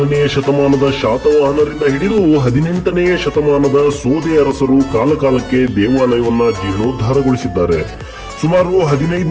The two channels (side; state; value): both; identical; correlation 1.00